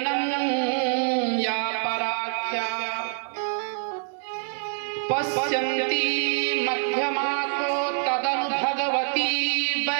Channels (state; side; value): silent; left; 61 dB below the other